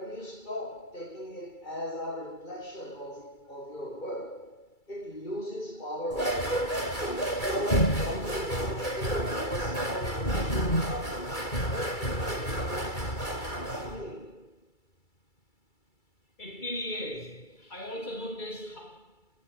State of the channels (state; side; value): late; right; 2.3 ms